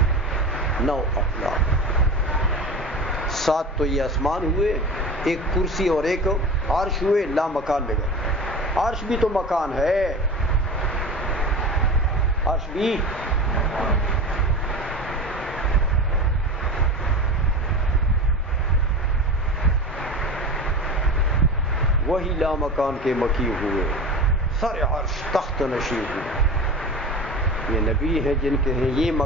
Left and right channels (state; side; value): normal; both; correlation 0.31